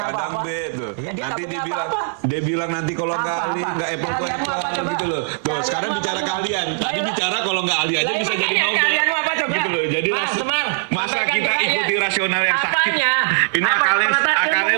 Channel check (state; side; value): silent; left; 65 dB below the other